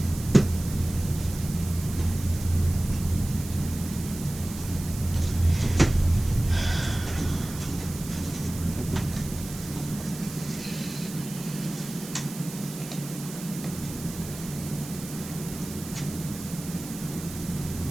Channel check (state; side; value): noise; right; hiss, 13 dB below the sound